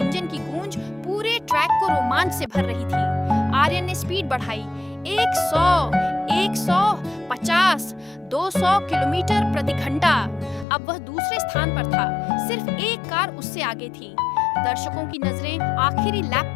की गूंज पूरे ट्रैक को रोमांच से भर रही थी। आर्यन ने स्पीड बढ़ाई। 100, 150, 200 किलोमीटर प्रति घंटा। अब वह दूसरे स्थान पर था, सिर्फ एक कार उससे आगे थी। दर्शकों की नजरें आखिरी लैप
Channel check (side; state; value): right; drops out; at 10.7 s